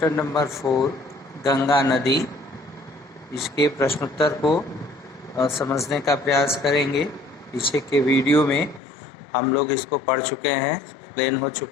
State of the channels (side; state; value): right; drops out; at 8.8 s